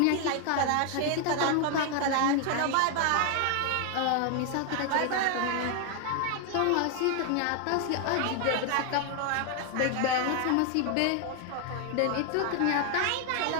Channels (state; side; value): different; both; correlation 0.00